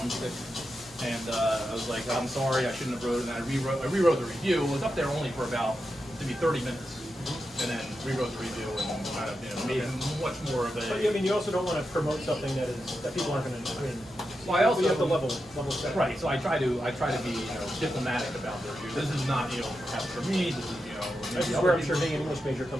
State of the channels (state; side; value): normal; both; correlation 0.88